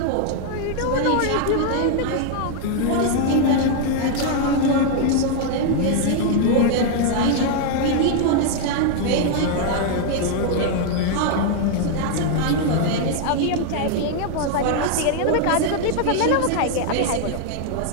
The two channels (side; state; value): both; different; correlation 0.00